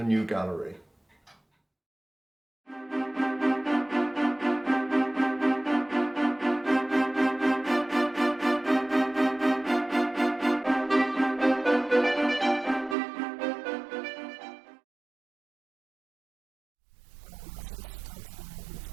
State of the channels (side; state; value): left; drops out; at 13.0 s